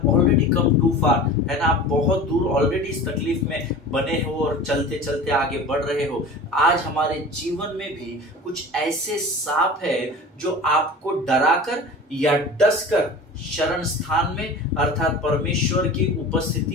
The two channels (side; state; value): both; normal; correlation 0.37